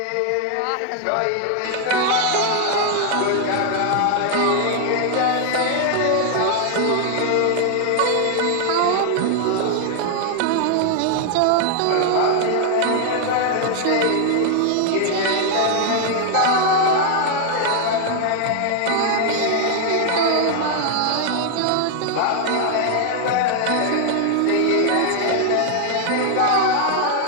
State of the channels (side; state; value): both; different; correlation 0.00